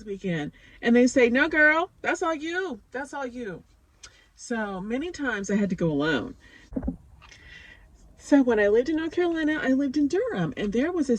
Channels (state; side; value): identical; both; correlation 1.00